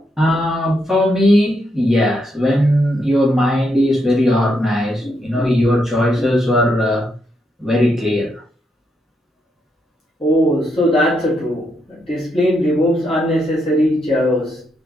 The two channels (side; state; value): both; normal; correlation 0.79